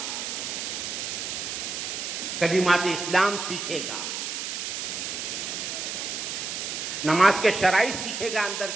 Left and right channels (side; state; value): right; noise; hiss, 4 dB below the sound